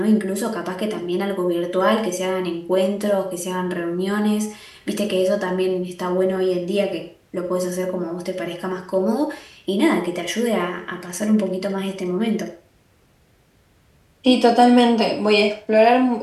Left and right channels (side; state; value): both; identical; correlation 1.00